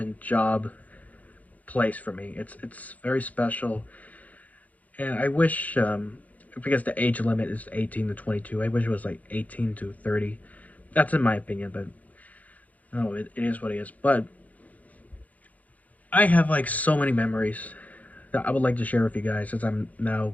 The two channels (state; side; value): late; right; 0.075 ms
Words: job place for me. It's very special, and I wish because the age limit is 18 to 22. I wish it was like 18 to 30. That's in my opinion, but no, it is what it is. But I have like so many memories that I would like to share with you guys since I'm now